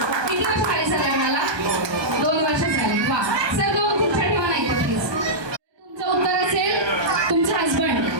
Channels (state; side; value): late; left; 1.3 ms